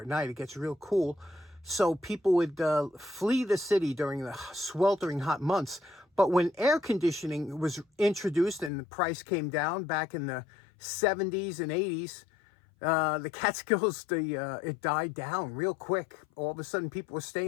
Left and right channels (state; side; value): drops out; right; at 8.7 s